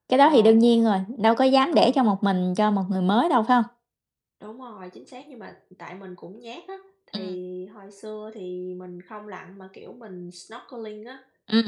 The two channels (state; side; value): identical; both; correlation 1.00